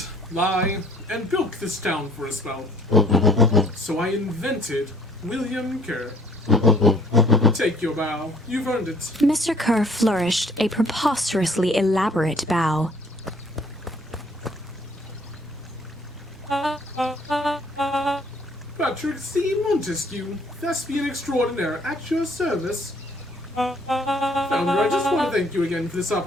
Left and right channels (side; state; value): both; normal; correlation 0.58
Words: lie, and bilk this town for a spell. So I invented William Kerr. Take your bow. You've earned it. Mr. Kerr flourished a preposterously elaborate bow. Patrick C. Montesquieu, thespian extraordinaire, at your service. Founder, I just want to thank you again for this